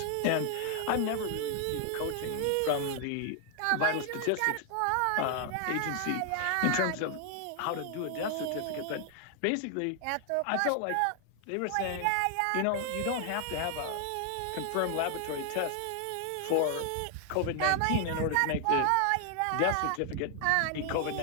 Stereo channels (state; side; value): different; both; correlation 0.00